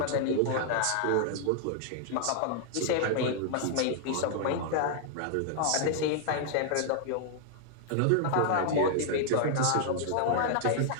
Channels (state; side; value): different; both; correlation 0.00